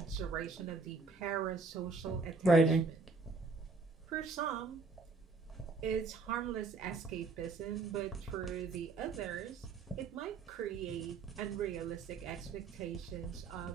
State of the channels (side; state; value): left; quieter; 4.3 dB